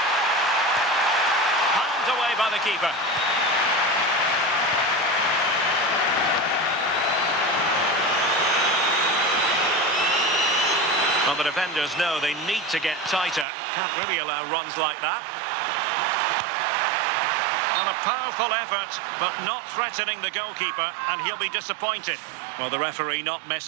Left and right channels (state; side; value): drops out; left; at 13.5 s